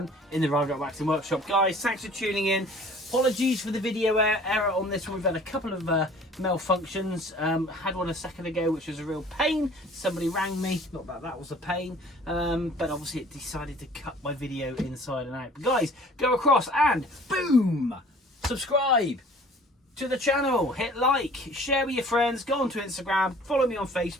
in the Rider Waxing Workshop. Guys, thanks for tuning in. Apologies for the video error on this one. We've had a couple of malfunctions. Had one a second ago, which was a real pain. Somebody rang me, not that that was a pain, but obviously it decided to cut my video inside and out. But guys, go across and boom, subscribe to the channel, hit like, share with your friends, go onto Instagram, follow me on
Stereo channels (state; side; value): normal; both; correlation 0.50